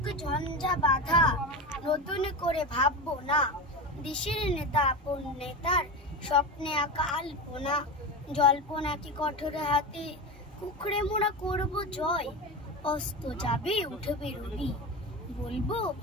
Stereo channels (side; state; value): both; normal; correlation 0.22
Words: ঝঞ্ঝা বাধা, নতুন করে ভাববো না। দেশের নেতা আপন নেতার স্বপ্নে আঁকা আলপনা। জল্পনা কি কঠোর হাতে কুকড়ে মোড়া করব জয়। অস্ত যাবে উঠবে রবি, বলবো